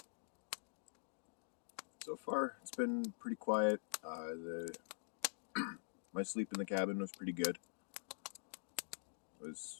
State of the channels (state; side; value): silent; right; digital silence